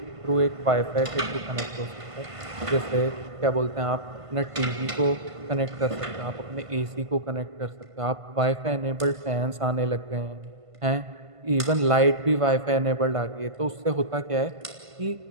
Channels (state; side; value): late; left; 1.5 ms